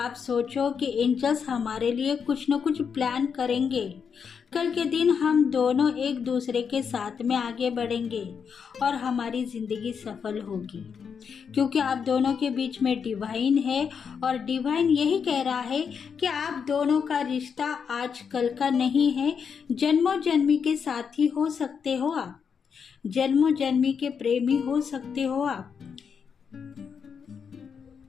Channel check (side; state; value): right; quieter; 6.6 dB